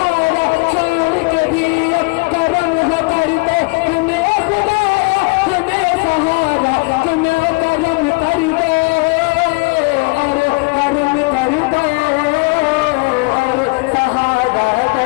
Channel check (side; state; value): right; quieter; 28.2 dB